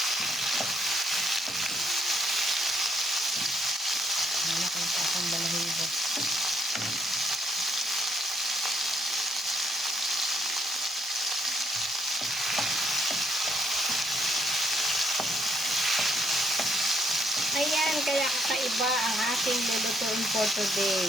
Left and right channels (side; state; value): both; normal; correlation 0.72